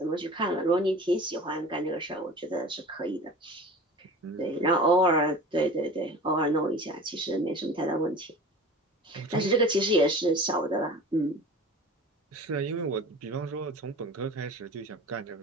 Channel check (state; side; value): normal; both; correlation 0.38